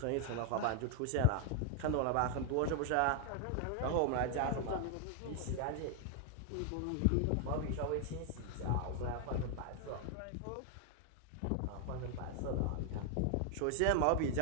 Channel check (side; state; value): both; different; correlation 0.00